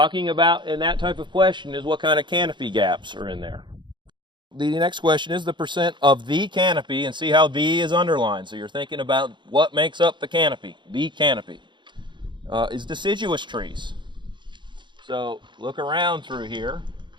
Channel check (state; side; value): late; left; 0.23 ms